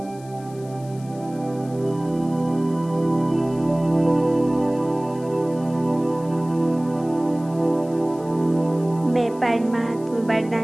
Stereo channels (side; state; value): left; noise; hiss, 24 dB below the sound